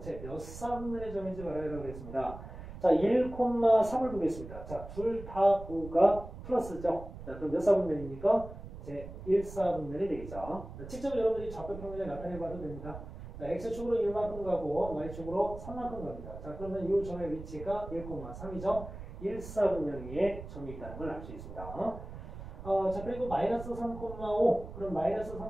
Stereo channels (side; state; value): right; noise; rumble, 12 dB below the sound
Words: 몇 사분면의 점인지 말하려고 했습니다. 1,3을 보겠습니다. 둘 다 5가 플러스죠. 그럼 몇 사분면입니까? 제1사분면이 되겠죠. 직접 여러분들이 좌표평면에 나타내봐도 됩니다. X축으로 1만큼 가고 Y축으로 3만큼 갑니다. 그러면 이 점의 위치가 1,3이죠. 1사분면 위에 점이 있다는 걸 알 수 있습니다. 그리고 마이너스 3,5. 그럼 마이너스